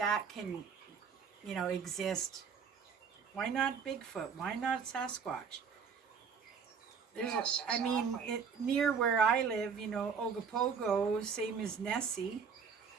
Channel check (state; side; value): quieter; left; 6.2 dB